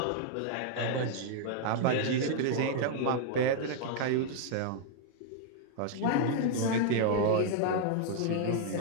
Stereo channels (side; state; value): both; different; correlation -0.01